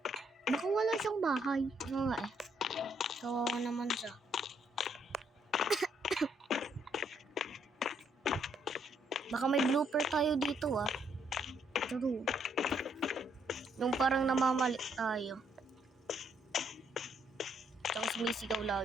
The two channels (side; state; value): both; normal; correlation 0.72